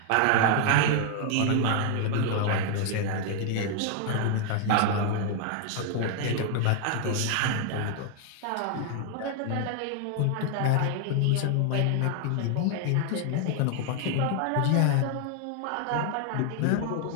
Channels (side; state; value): both; different; correlation 0.00